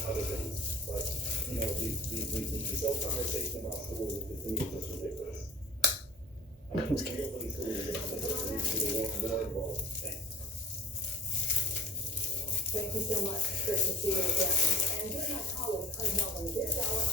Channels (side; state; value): both; normal; correlation 0.45